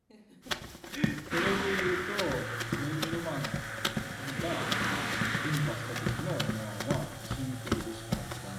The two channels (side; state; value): both; identical; correlation 1.00